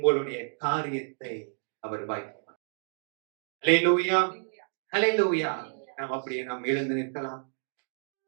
காரியத்தை அவர் வாய்ப்பார். அல்லேலூயா. அல்லேலூயா. நாம் அப்படியே நாம் எழுந்து நிற்கலாம்.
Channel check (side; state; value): left; silent; digital silence